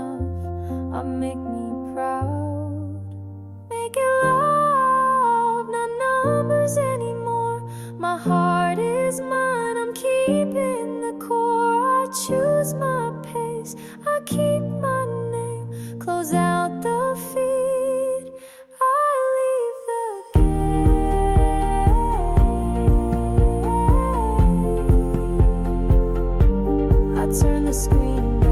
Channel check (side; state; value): both; identical; correlation 1.00